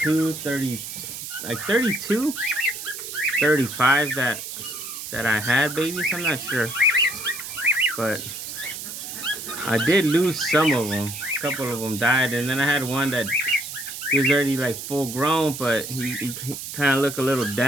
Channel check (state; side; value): noise; right; hiss, 8 dB below the sound